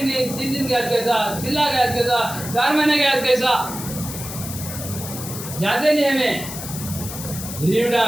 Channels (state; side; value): noise; left; hiss, 9 dB below the sound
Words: दिन के आज कैसा, 6 लाख के आज कैसा, 4 महीने के आज कैसा, जाते नहीं हमें